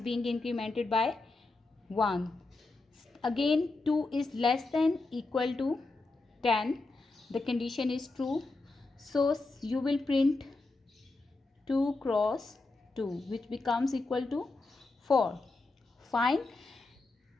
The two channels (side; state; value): right; quieter; 3.3 dB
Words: being incremented by 1. Again 2 is less than equal to 10. The condition is true. So you will print 2 cross 2, which becomes equal to 4. Fine.